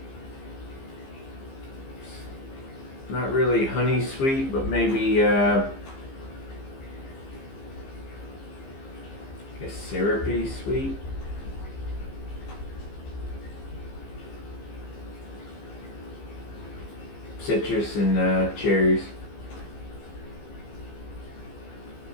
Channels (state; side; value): late; right; 15 ms